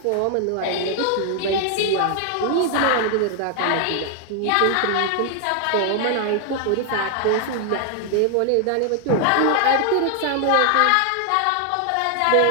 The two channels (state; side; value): different; both; correlation 0.00